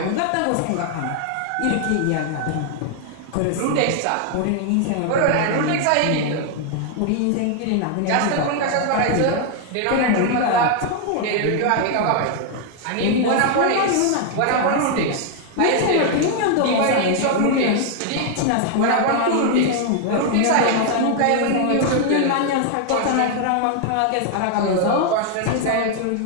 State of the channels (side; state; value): both; different; correlation 0.00